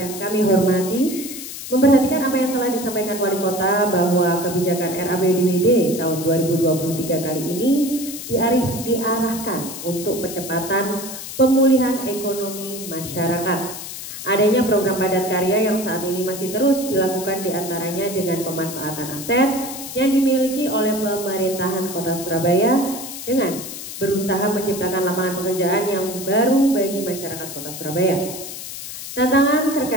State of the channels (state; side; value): noise; left; hiss, 9 dB below the sound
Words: kami hormati, memperhatikan apa yang telah disampaikan Wali Kota bahwa kebijakan RAPBD tahun 2023 kali ini diarahkan untuk percepatan pemulihan ekonomi masyarakat. Adanya program padat karya yang saat ini masih terus dilakukan diantaranya dengan pemanfaatan aset yang dimiliki oleh pemerintahan Kota Surabaya dengan berusaha menciptakan lapangan pekerjaan yang baru bagi masyarakat Kota Surabaya. Tantangan